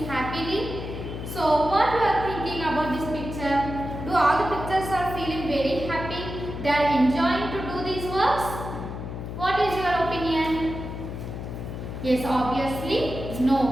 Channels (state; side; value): noise; left; hum, 7 dB below the sound